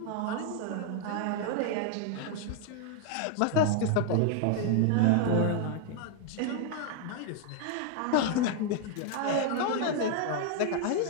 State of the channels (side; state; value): both; different; correlation 0.00